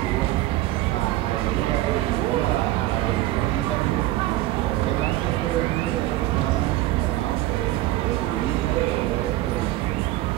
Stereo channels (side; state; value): left; quieter; 16.1 dB